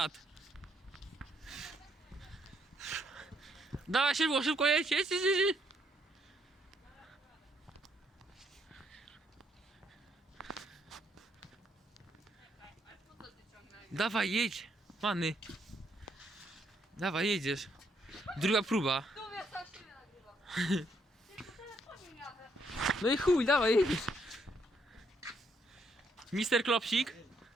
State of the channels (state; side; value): normal; both; correlation 0.73